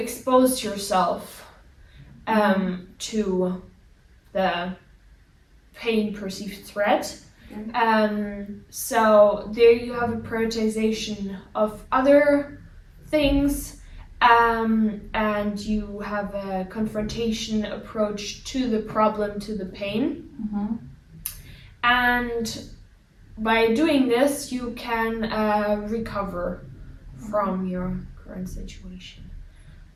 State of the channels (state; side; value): identical; both; correlation 1.00